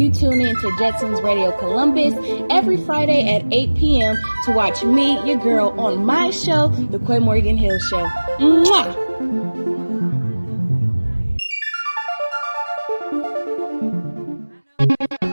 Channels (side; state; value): both; inverted; correlation -1.00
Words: tune in to Jetson's Radio Columbus every Friday at 8 p.m. to watch me, your girl, on my show, The Quinn Morgan Hill Show. Mwah!